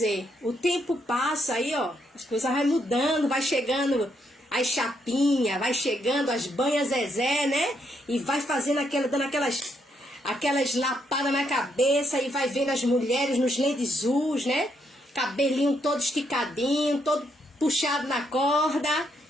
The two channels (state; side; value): normal; both; correlation 0.76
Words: O tempo passa aí, ó, as coisas vai mudando, vai chegando as chapinhas, vai chegando as banhas Zezé, né? E vai fazendo dando aquelas lapadas na cabeça e vai vendo as mulheres nos lenços, né? Cabelinho todo esticadinho, todo puxado na corda.